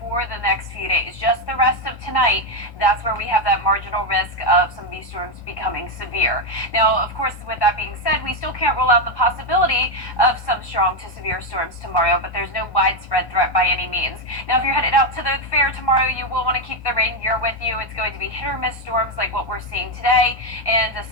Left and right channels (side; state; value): right; late; 1.1 ms